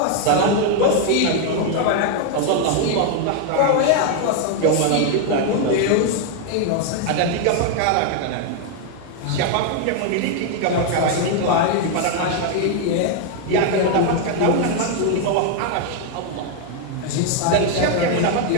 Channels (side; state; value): both; different; correlation 0.00